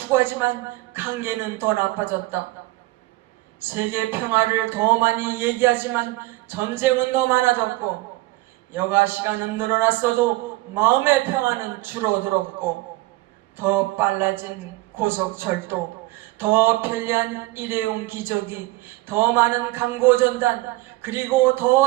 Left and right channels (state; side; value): quieter; left; 19.8 dB